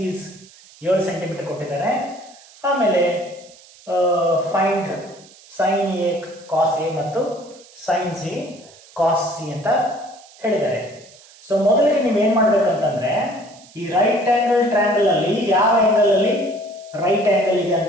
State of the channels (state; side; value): noise; right; hiss, 24 dB below the sound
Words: 7 ಸೆಂಟಿಮೀಟರ್ ಕೊಟ್ಟಿದ್ದಾರೆ. ಆಮೇಲೆ find sine A cos A ಮತ್ತು ಸೈನ್ ಸಿ ಕಾಸ್ ಸಿ ಅಂತ ಹೇಳಿದ್ದಾರೆ. ಸೊ ಮೊದಲಿಗೆ ನೀವೇನ್ ಮಾಡ್ಬೇಕಂತಂದ್ರೆ, ಈ ರೈಟ್ ಆಂಗಲ್ ಟ್ರಯಾಂಗಲ್ ಅಲ್ಲಿ ಯಾವ ಆಂಗಲ್ ಅಲ್ಲಿ ರೈಟ್ ಆಂಗಲ್ ಇದೆ